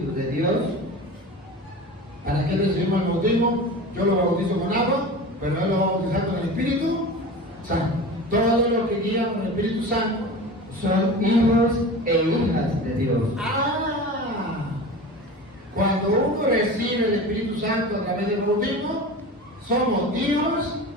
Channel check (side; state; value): both; normal; correlation 0.33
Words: de Dios. ¿Para qué recibimos el bautismo? Yo lo bautizo con agua, pero él lo va a bautizar con el Espíritu Santo. Todos los que guían con el Espíritu Santo son hijos e hijas de Dios. Cuando uno recibe el Espíritu Santo a través del bautismo, somos hijos